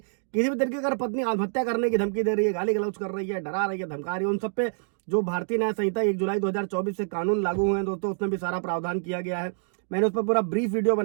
भी तरीके अगर पत्नी आत्महत्या करने की धमकी दे रही है, गाली गलौज कर रही है, डरा रही है, धमका रही है, उन सब पे जो भारतीय न्याय संहिता 1 जुलाई 2024 से कानून लागू हुए हैं दोस्तों, उसमें भी सारा प्रावधान किया गया है। मैंने उस पर पूरा ब्रीफ वीडियो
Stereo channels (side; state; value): left; silent; digital silence